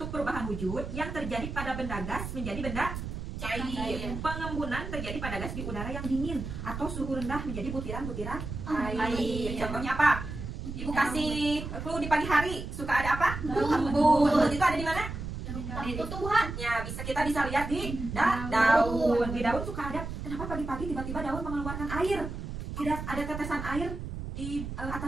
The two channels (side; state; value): right; noise; rumble, 7 dB below the sound